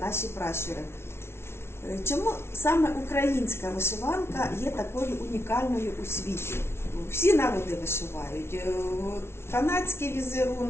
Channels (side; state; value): right; late; 0.12 ms